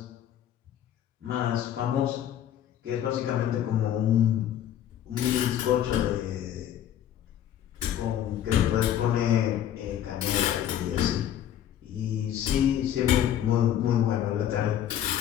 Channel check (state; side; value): quieter; right; 10.8 dB